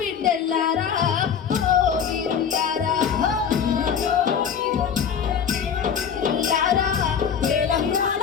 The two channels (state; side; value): quieter; right; 7.5 dB